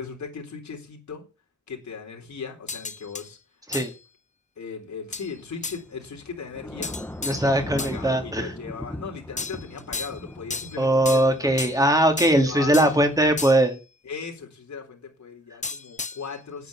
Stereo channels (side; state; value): both; normal; correlation 0.59